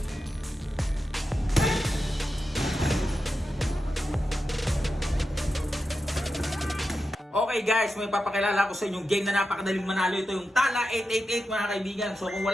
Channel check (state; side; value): normal; both; correlation 0.90